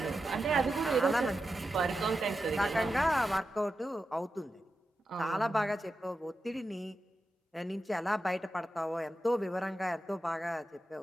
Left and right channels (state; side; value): normal; both; correlation 0.90